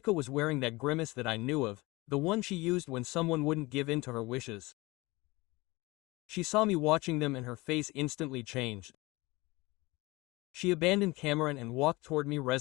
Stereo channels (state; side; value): quieter; right; 22.5 dB